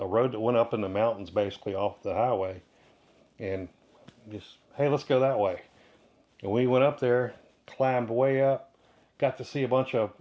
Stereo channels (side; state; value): both; identical; correlation 1.00